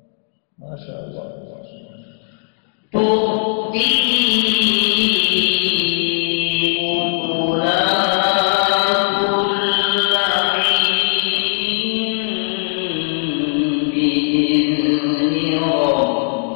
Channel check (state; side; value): silent; right; digital silence